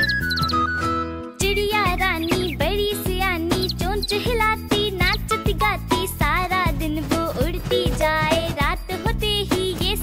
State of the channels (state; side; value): identical; both; correlation 1.00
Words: चिड़िया रानी बड़ी सियानी, चोंच हिलाती, नाचती गाती, सारा दिन वो उड़ती जाए, रात होते ही ये